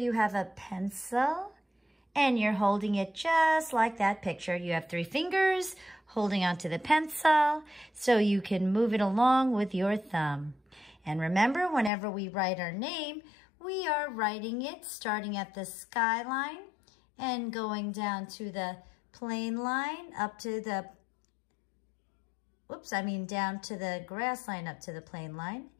have a pencil and you're holding it just like that picture. You have 3 fingers holding onto the pencil so you can move it along with your thumb. And remember, whenever we write our name, we are writing it starting at the skyline and going down to the plane line up to the, down to the grass line up to the plane line.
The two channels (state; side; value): drops out; right; at 11.9 s